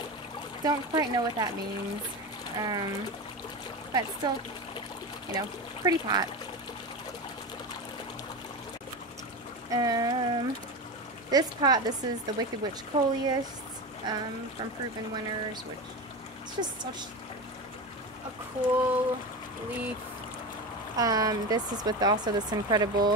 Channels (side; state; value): both; normal; correlation 0.22